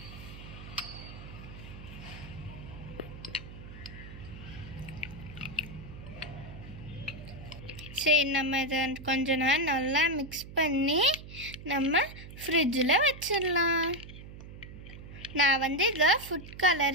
சரி, நம்ம இதை கொஞ்ச நேரம் நல்லா மிக்ஸ் பண்ணி நம்ம ஃப்ரிட்ஜில் வச்சிடலாம். நான் வந்து இதில் ஃபுட்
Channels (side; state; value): right; noise; hum, 14 dB below the sound